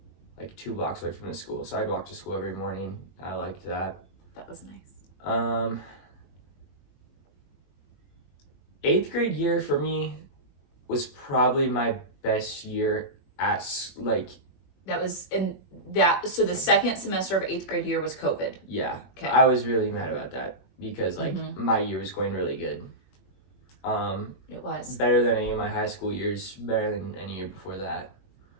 2 blocks away from the school, so I'd walk to school every morning. I liked that. That was nice. 8th grade year for me was probably my best year at that was in that. So the second semester of 8th grade year was COVID. Yeah. Okay. I was really mad about that because my year was going really good. It was better than any of my high school years, better than any year before that.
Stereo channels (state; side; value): late; right; 21 ms